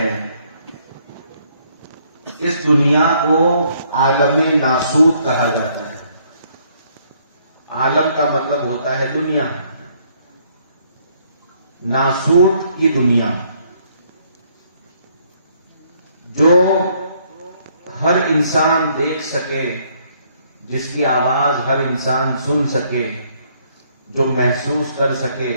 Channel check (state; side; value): inverted; both; correlation -0.67